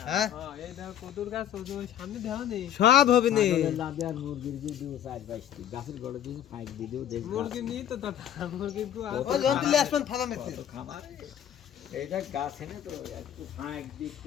হ্যাঁ হ্যাঁ এই দাও কদুর গাছ ওই সামনে দেও নি সব হবে নি ছাগলের লাদে আর মুরগির দিয়ে দিও 4-5টি গাছের গড়ে দিয়ে ফাইক দিয়ে দিও দেখ মুরগি নি তো দাদা মুরগি কো ও যন্ত্র লিয়ে আসবেন ফালা মেতে খাবার এইটা গাছ এনে তো একটু ফাইক দিয়ে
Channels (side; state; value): right; quieter; 10.4 dB